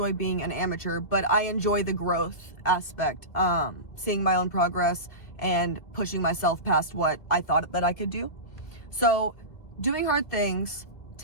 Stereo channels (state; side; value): late; right; 2.0 ms